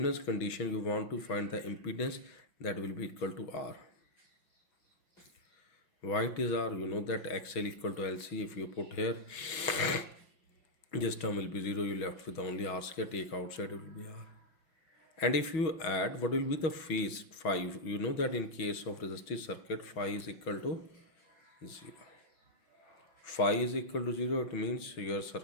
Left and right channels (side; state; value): right; late; 6.2 ms